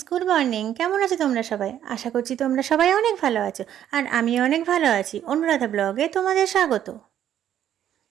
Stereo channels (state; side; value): quieter; left; 10.7 dB